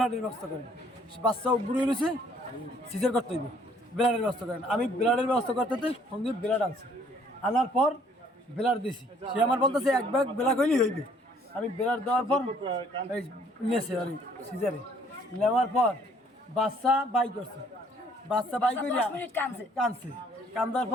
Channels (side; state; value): both; normal; correlation 0.61